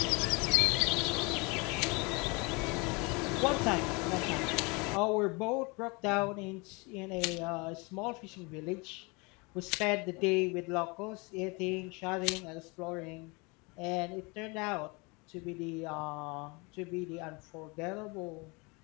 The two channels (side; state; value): right; quieter; 28.5 dB